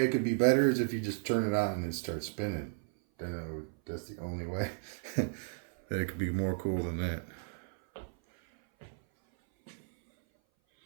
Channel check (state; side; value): silent; left; 55 dB below the other